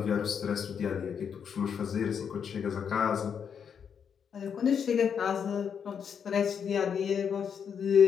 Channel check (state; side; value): quieter; right; 7.3 dB